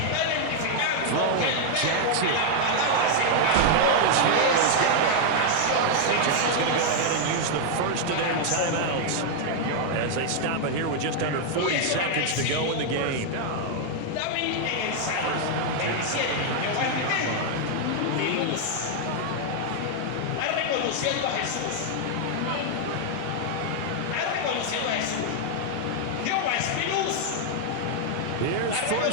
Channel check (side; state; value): both; different; correlation 0.00